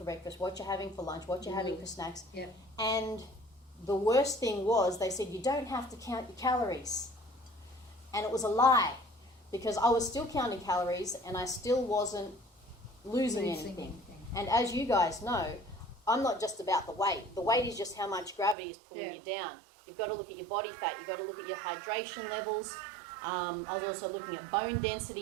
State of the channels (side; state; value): left; drops out; at 18.6 s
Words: breakfast, what you're having for lunch, what you're having for snacks. Yeah. And the worst thing was they said you don't have to count your calories. And it was a lie, because I was still counting calories and I still wasn't losing anything. And as you guys know, I'm not just about the weight. The weight is just how much gravity is pulling you down. You've got to look at your body fat. You've got to look at your hydration levels. I was also looking at bone